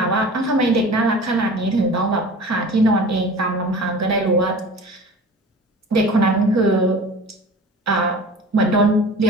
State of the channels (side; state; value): both; normal; correlation 0.39